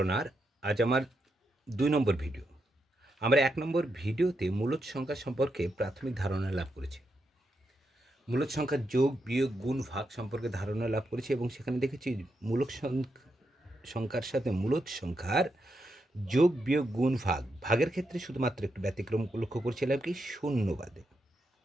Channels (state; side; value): normal; both; correlation 0.83